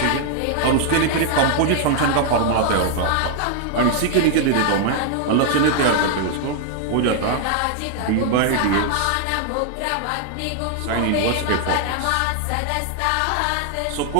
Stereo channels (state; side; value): different; both; correlation 0.00